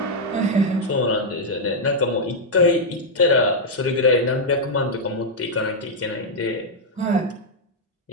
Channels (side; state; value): both; normal; correlation -0.03